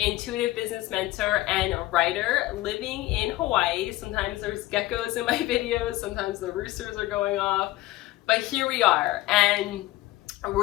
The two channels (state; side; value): quieter; right; 17.9 dB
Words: business mentor, and a writer living in Hawaii. Sometimes there's geckos in my videos, sometimes the roosters are going off, but here we are. And